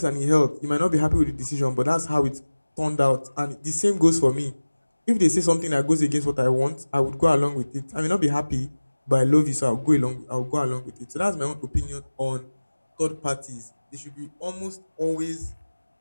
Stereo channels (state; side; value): inverted; both; correlation -1.00